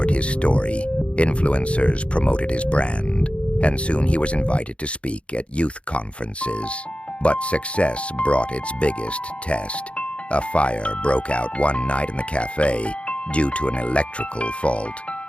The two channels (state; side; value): late; right; 0.060 ms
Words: his story, influencers promoted his brand, and soon he was invited to speak at youth conferences. But success brought its biggest test. A fire broke out one night in the cafe due to an electrical fault.